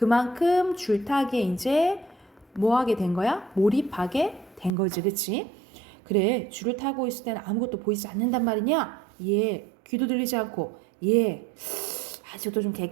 줄타기에 이제 뭐 하게 된 거야? 몰입하게 된 거지, 그치? 그래, 줄을 타고 있을 때는 아무것도 보이지 않는단 말이냐? 예, 귀도 들리지 않고, 예, 아직도 좀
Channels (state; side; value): drops out; left; at 4.7 s